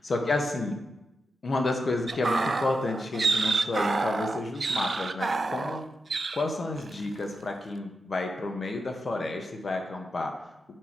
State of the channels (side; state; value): both; normal; correlation 0.87